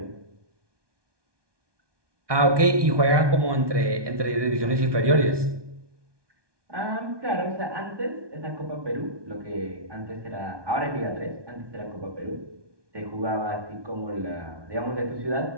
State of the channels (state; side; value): late; left; 1.2 ms